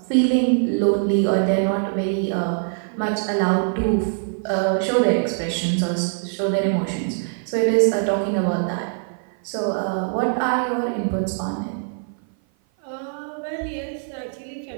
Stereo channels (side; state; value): left; silent; 55 dB below the other